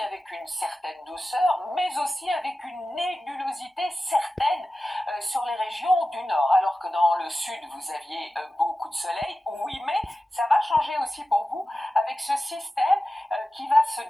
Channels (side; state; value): both; normal; correlation 0.94